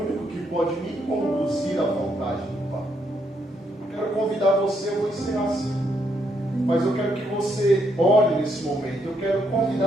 que pode me conduzir à vontade do Pai. Eu quero convidar você, eu vou encerrar assim, mas eu quero que você ore nesse momento. Eu quero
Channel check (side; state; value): both; normal; correlation 0.76